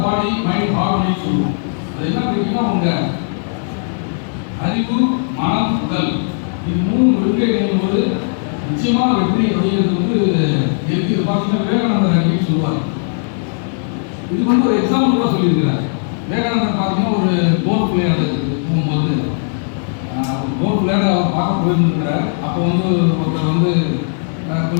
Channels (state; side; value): silent; right; digital silence